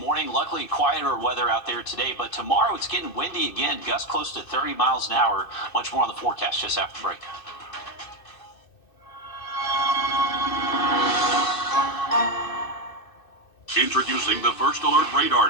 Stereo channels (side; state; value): right; late; 2.6 ms